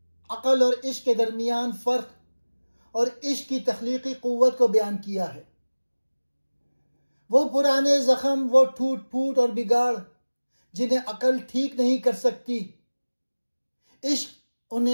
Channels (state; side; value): inverted; both; correlation -1.00